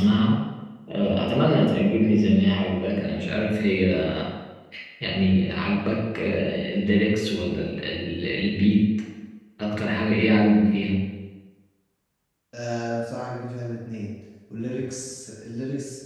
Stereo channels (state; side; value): identical; both; correlation 1.00